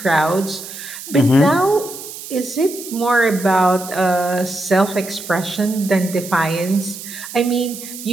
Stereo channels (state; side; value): noise; right; hiss, 12 dB below the sound